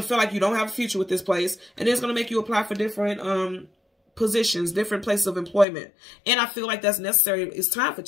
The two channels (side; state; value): right; drops out; at 5.7 s